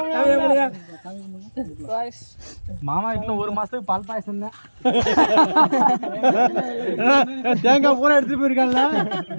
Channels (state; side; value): inverted; both; correlation -1.00